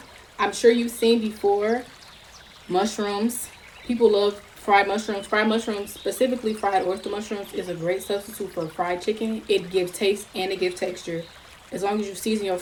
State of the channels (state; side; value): identical; both; correlation 1.00